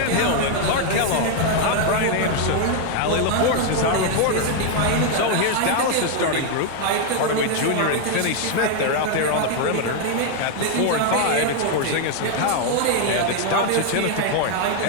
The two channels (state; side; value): different; both; correlation 0.00